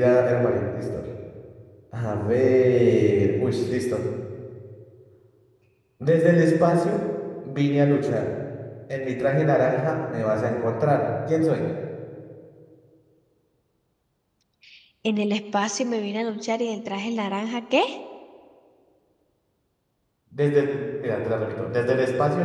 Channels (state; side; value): identical; both; correlation 1.00